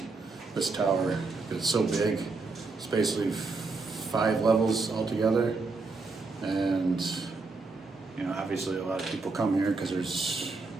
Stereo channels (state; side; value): quieter; left; 3.9 dB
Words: tower, because it's so big. It's basically 5 levels altogether, and you know, obviously a lot of people come here because there's